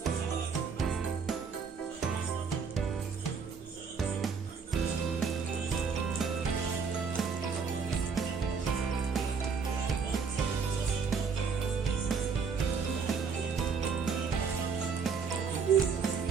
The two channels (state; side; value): quieter; left; 5.7 dB